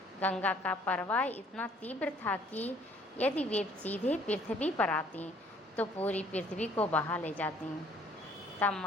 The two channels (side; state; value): both; normal; correlation 0.59